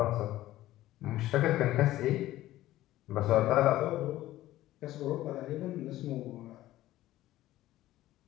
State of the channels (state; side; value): quieter; right; 15.2 dB